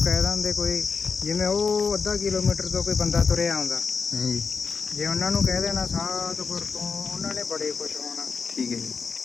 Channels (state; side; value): quieter; right; 5.3 dB